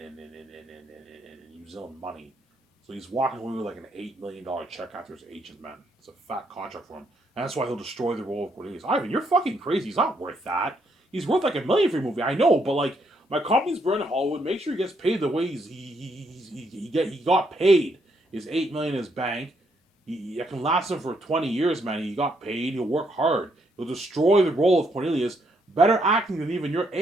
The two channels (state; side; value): normal; both; correlation 0.74